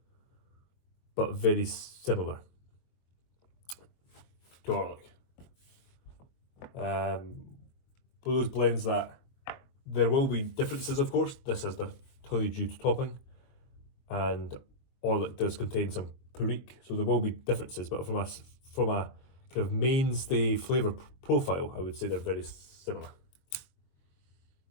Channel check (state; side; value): late; right; 22 ms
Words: but very similar. garlic. For those blends that there will be differences, of course. This has the honeydew topping, and all it does contain some perique, so there will be differences. But from a kind of mainstay flavour profile, I would say they're very similar.